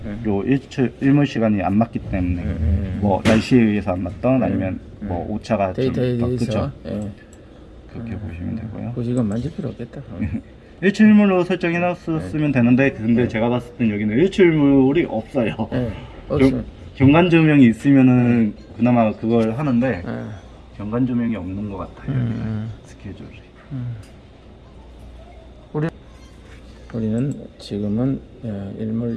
요 일몰 시간이 안 맞기 때문에 뭐 날씨에 의해서 안 맞던 아니면 뭐 오차가 데이터에 좀 대해서 그렇게 보시면 되고요. 그 이건 만질 필요 없겠다. 일출물로 설정해놨으면 되는데 근데 제가 봤을 땐 여기는 일출물이 없어요. 경관 조명이 있으면은 그나마 그걸 하는데 예. 경관 조명이 없는 것 같아요. 음. 스케줄이. 우리는 지금은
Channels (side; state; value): both; identical; correlation 1.00